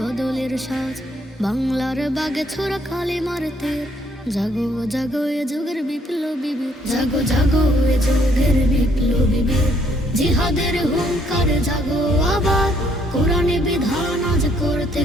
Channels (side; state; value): both; normal; correlation 0.68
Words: সাজ। বাংলার বাগে ছোড়া কালিমার তীর, জাগো জাগো এ যুগের বিপ্লবী বীর। জাগো জাগো এ যুগের বিপ্লবী বীর, জিহাদের হুঙ্কারে জাগো আবার। কোরআনী বিধান আজ করতে